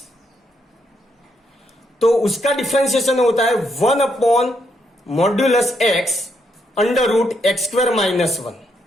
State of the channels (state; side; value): normal; both; correlation 0.77